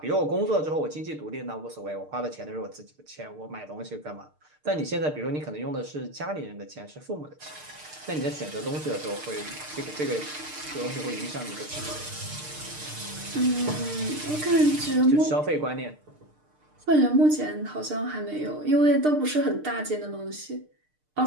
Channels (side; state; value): left; late; 6.6 ms